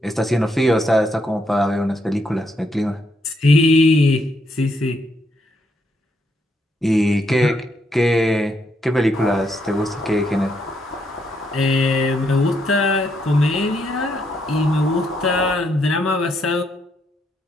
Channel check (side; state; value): both; normal; correlation 0.76